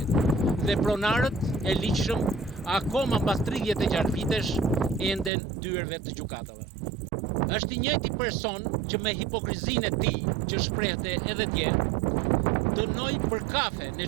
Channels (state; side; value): drops out; left; at 5.3 s